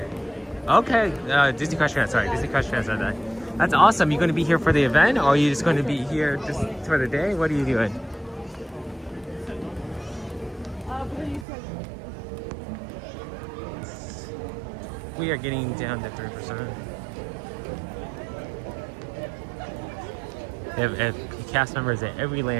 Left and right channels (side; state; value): left; drops out; at 11.5 s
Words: Okay, Disney Crush Fan, sorry, Disney Crush Fan said that. That's awesome. You going to be here for the event, or are you just going to be here just for the day? What are you doing? We are getting down to 3%. They have cast members at every